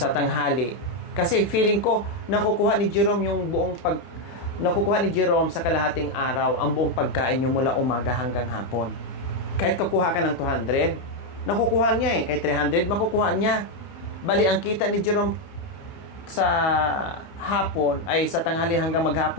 tanghali. Kasi feeling ko, nakukuha ni Jerome sa kalahating araw ang buong pagkain nyo mula umaga hanggang hapon. Kahit kukuha ka ng 200, nakukuha niya eh. Kahit 300, makukuha niya. Bali, ang kita ni Jerome sa hapon, ay sa tanghali hanggang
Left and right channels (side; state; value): right; late; 30 ms